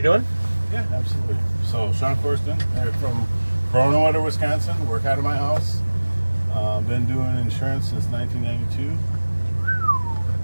doing? Yeah, absolutely. So Sean Corsten, from Corona, Wisconsin. Work out of my house. Been doing insurance since 1992.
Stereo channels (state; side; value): inverted; both; correlation -1.00